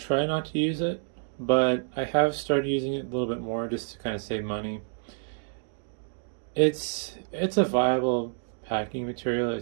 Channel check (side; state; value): left; silent; digital silence